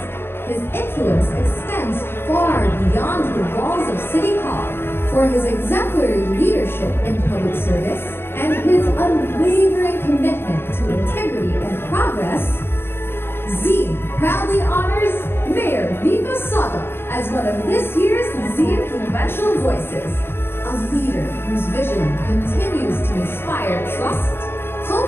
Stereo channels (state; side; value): late; right; 0.11 ms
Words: his influence extends far beyond the walls of City Hall, for his exemplary leadership in public service and his unwavering commitment to integrity and progress, Zine proudly honors Mayor Vico Soto as one of this year's Zine Influential Voices, a leader whose vision continues to inspire trust,